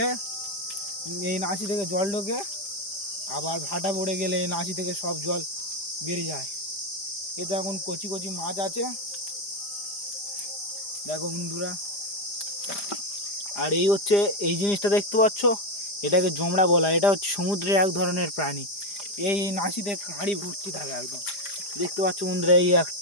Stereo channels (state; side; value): late; right; 4.9 ms